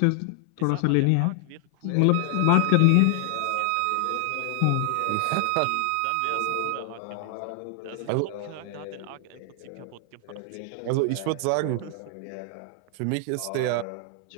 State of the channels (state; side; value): different; both; correlation 0.00